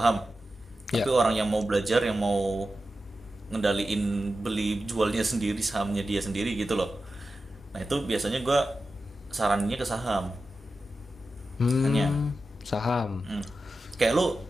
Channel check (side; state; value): both; normal; correlation 0.92